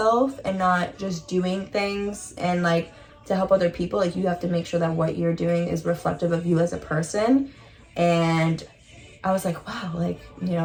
and not just doing things and, like, to help other people, like, you have to make sure that what you're doing is reflective of you as a person. And I was like, wow, like,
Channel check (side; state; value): both; identical; correlation 1.00